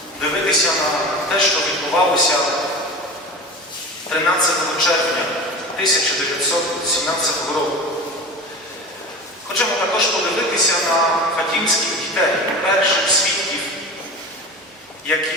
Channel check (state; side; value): normal; both; correlation 0.32